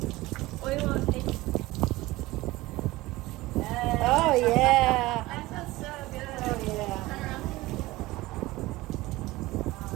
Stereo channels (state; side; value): quieter; left; 19.2 dB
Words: on face? Oh yeah. That feels so good. Oh yeah. Turn around.